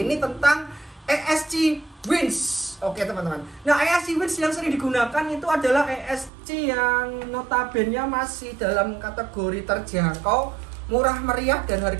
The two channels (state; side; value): drops out; left; at 6.3 s